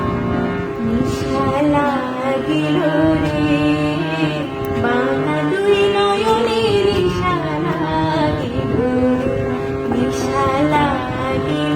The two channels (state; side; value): identical; both; correlation 1.00